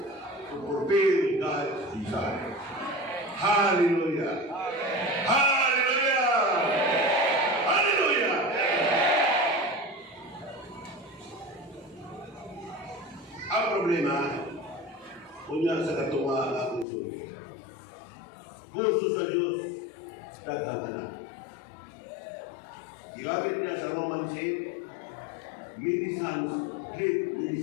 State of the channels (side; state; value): right; drops out; at 16.9 s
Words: to fulfill God's desire. Hallelujah! Hallelujah! Hallelujah! Ang problema, kunya sa katunga ako sulit. Gusto sa Diyos, daghang anak. Ginamit niya sa Romans 8, many sons lead many